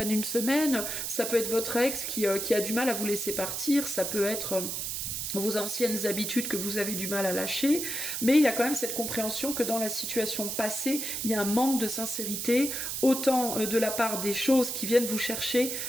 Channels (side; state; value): right; noise; hiss, 3 dB below the sound